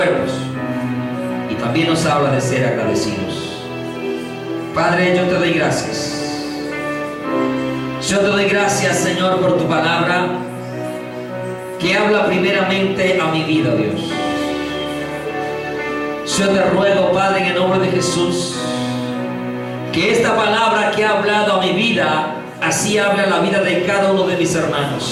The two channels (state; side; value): identical; both; correlation 1.00